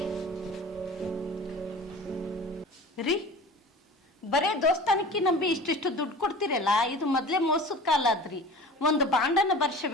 ರೀ, ಬರೇ ದೋಸ್ತಾನಕ್ಕೆ ನಂಬಿ ಇಷ್ಟಿಷ್ಟು ದುಡ್ಡು ಕೊಡ್ತಿರಲ್ಲ, ಇದು ಮೊದ್ಲೇ ಮೋಸದ ಕಾಲ ಆದ್ರಿ. ಒಂದು ಬಾಂಡನ್ನ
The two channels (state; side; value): normal; both; correlation 0.39